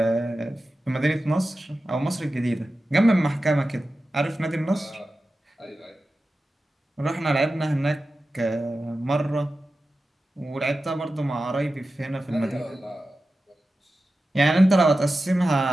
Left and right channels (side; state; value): both; normal; correlation 0.93